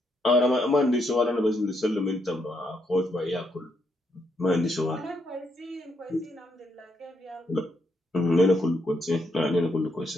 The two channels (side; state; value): both; normal; correlation 0.77